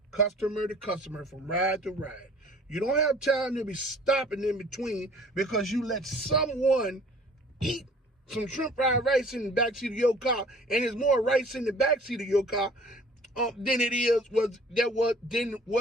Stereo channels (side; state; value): both; normal; correlation 0.51